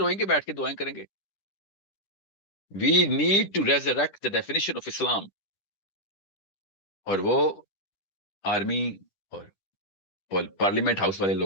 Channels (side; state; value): right; late; 10 ms